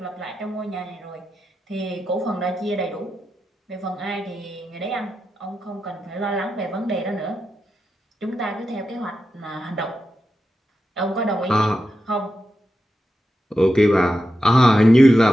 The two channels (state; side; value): normal; both; correlation 0.89